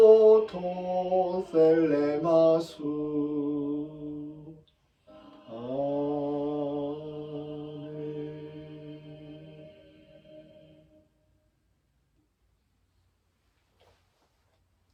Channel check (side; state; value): both; identical; correlation 1.00